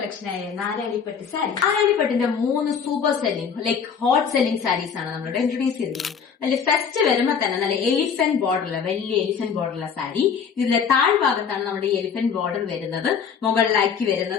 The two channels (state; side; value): quieter; right; 6.7 dB